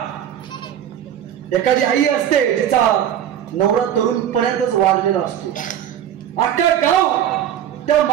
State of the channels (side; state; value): left; quieter; 10.2 dB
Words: एखादी आई असते तिचा नवरा तरुणपणातच वाढलेला असतो. अख्खा गाव त्या